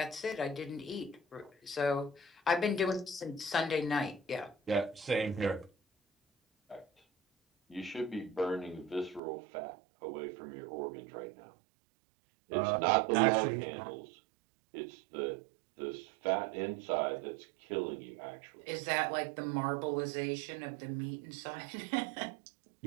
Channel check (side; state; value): left; drops out; at 9.2 s